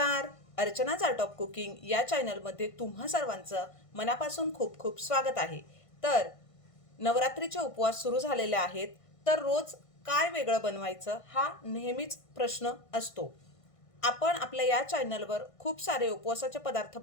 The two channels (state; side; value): late; right; 1.5 ms